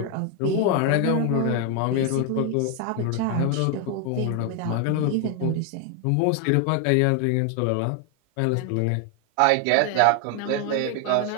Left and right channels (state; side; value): different; both; correlation 0.01